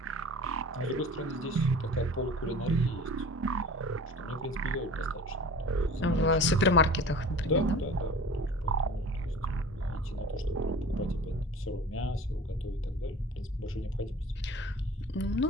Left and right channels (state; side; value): normal; both; correlation 0.40